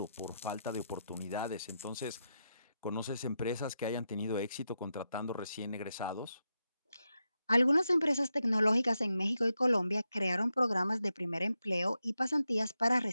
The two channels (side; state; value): both; inverted; correlation -0.87